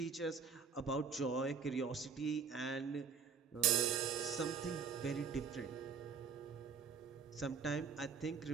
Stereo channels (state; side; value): quieter; left; 5.9 dB